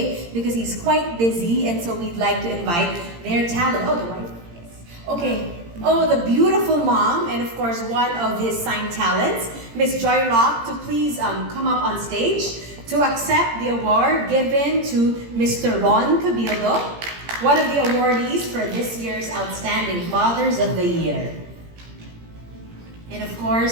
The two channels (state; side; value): late; left; 17 ms